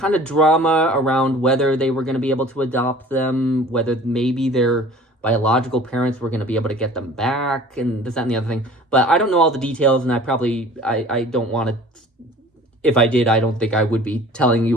of drama around whether they were going to be able to adopt them, whether maybe their biological parents were going to be able to get them back, and this, that, and the other thing. But I don't know all the details, and I don't want to, if I did, I don't think I would be telling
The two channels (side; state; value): both; normal; correlation 0.46